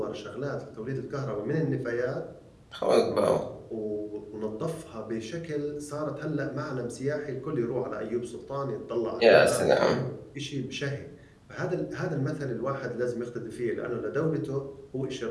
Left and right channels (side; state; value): both; identical; correlation 1.00